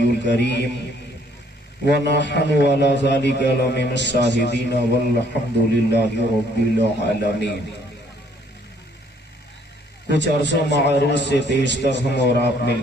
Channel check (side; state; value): both; normal; correlation 0.64